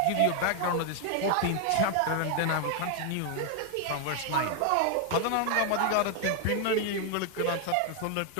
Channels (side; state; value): both; different; correlation 0.01